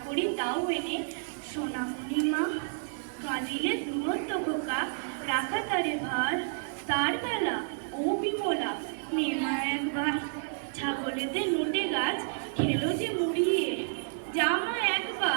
করি তাও এনে সোনামণি মা। কাঁদিলে দূরত্ব খোকা, রাখা তারে ভার, তার বেলা ও বিমলা নেমা একবার। ছাগলেদের নোটে গাছ খেলো যে মুড়িয়ে, জামা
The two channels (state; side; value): silent; left; digital silence